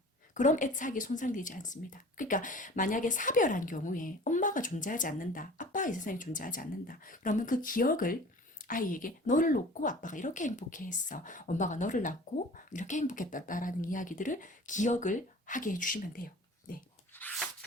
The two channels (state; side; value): normal; both; correlation 0.43